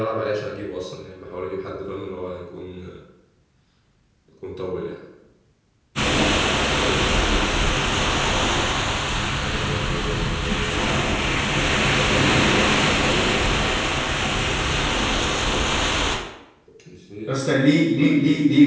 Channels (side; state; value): both; identical; correlation 1.00